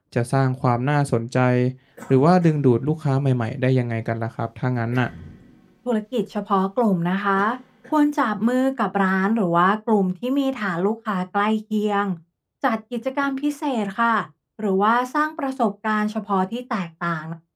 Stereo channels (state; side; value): identical; both; correlation 1.00